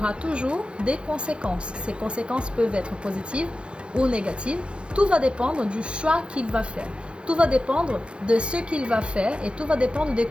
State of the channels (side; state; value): left; late; 0.056 ms